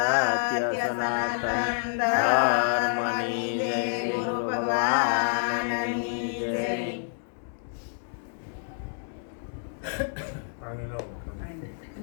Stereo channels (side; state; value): right; silent; digital silence